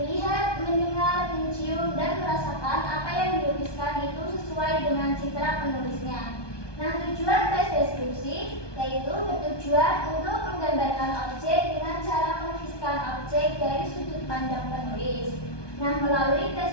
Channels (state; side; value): late; right; 1.2 ms